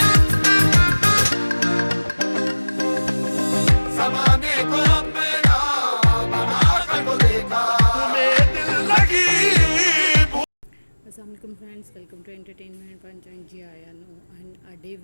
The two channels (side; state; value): both; inverted; correlation -1.00